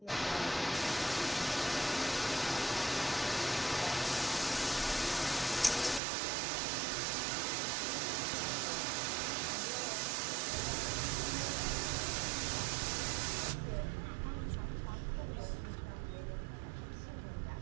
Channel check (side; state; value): left; drops out; at 6.0 s